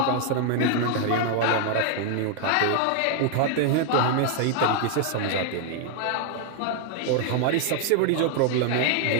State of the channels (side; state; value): both; different; correlation 0.00